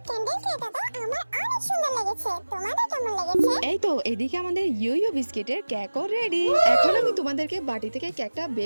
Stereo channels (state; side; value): inverted; both; correlation -1.00